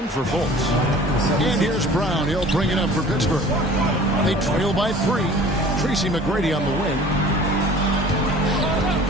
for Fultz. And here's Brown. He'll bring it up for Pittsburgh. They trail by 3. Tracy McGrady on the wing.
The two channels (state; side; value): normal; both; correlation 0.46